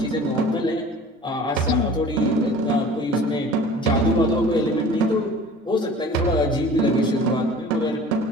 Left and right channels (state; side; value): normal; both; correlation 0.44